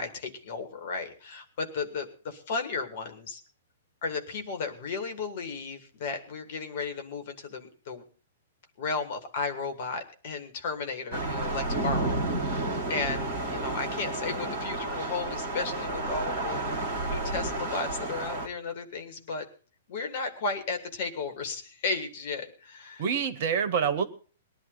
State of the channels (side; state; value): both; inverted; correlation -0.32